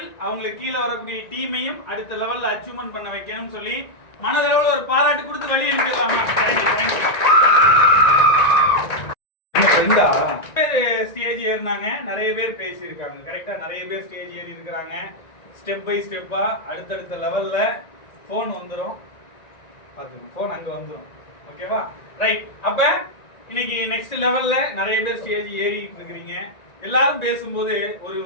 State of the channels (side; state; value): right; late; 1.9 ms